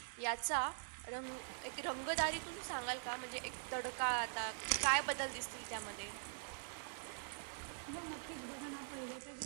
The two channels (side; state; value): left; silent; digital silence